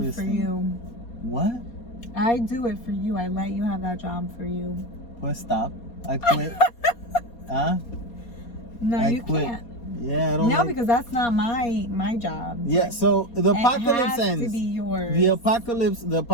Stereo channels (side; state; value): right; late; 4.2 ms